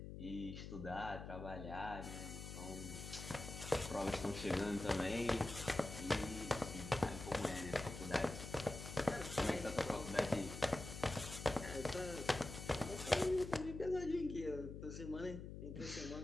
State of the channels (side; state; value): left; noise; hum, 8 dB below the sound